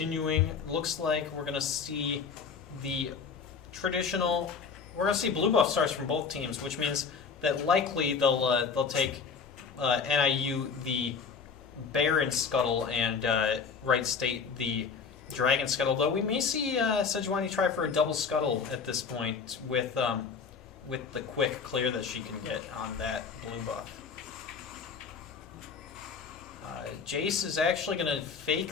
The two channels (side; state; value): right; quieter; 5.7 dB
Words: Looks like we're gonna see the traditional. We're gonna see blue buff stars from both teams, which means that likely they'll take NIU the Baron Scuttle and Wright State the Dragon Scuttle. Though we may see Sejuani try for a double Scuttle at this point with the quick clear that she can get on that blue buff. Jace is actually going to